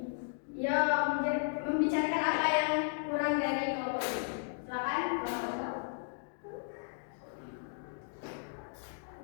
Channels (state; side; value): silent; right; digital silence